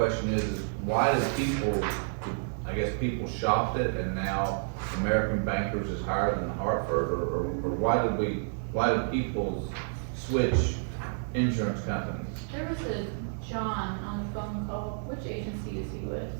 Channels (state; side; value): silent; left; digital silence